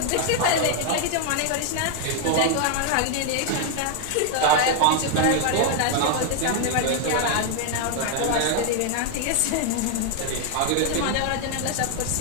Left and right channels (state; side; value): different; both; correlation 0.00